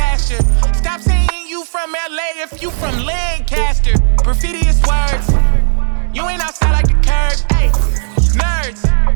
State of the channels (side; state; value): left; silent; digital silence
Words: you. Stop saying you from LA if you from Lancaster. Graffiti is words. You ain't outside.